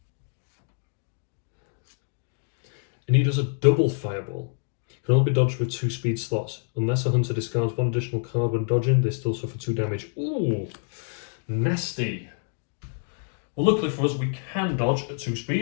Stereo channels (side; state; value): right; silent; 55 dB below the other